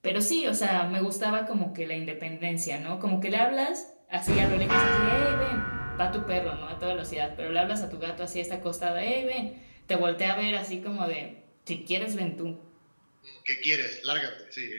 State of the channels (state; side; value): inverted; both; correlation -1.00